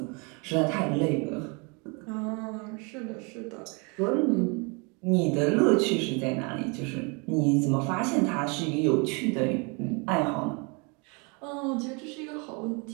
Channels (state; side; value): quieter; left; 31.9 dB